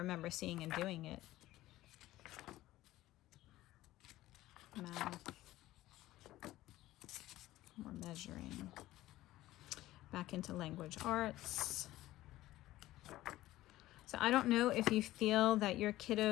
seeing and doing it. Math. More measuring. Back into language arts. So I don't know if you feel that your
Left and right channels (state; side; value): quieter; right; 15.9 dB